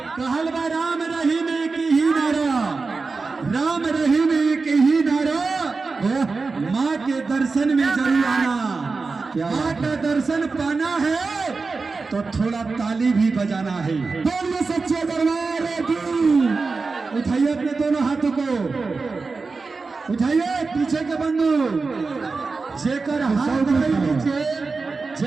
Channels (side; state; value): left; quieter; 4.2 dB